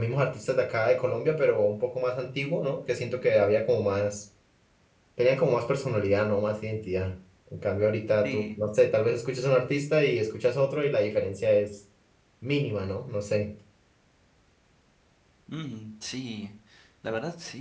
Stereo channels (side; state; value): both; identical; correlation 1.00